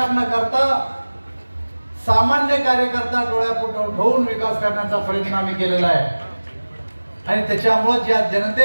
न करता सामान्य कार्यकर्ता डोळ्यापुढे ठेवून विकास करण्याचा प्रयत्न आम्ही केलेला आहे. आणि त्याच्यामुळे ज्या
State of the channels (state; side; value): inverted; both; correlation -1.00